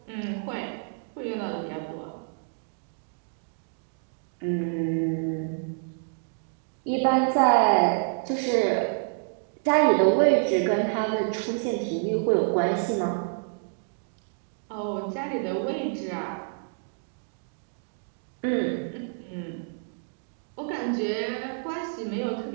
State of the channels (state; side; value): silent; left; digital silence